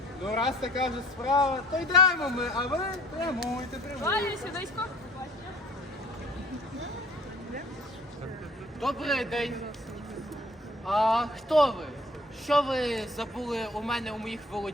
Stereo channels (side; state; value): both; normal; correlation 0.52